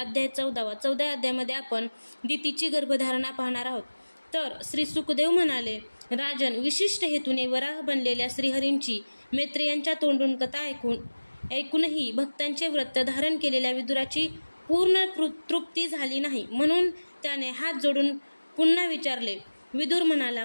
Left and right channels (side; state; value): both; inverted; correlation -1.00